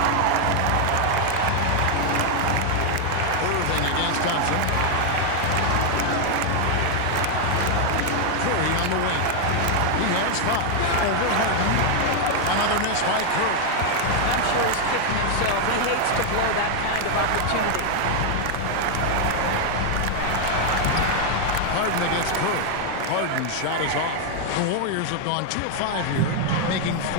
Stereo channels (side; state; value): both; different; correlation 0.00